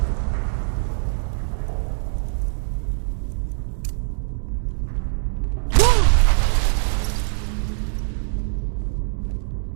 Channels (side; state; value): left; silent; 63 dB below the other